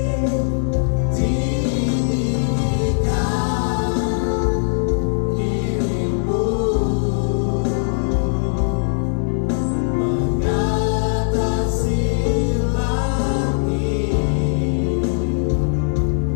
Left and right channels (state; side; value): silent; right; digital silence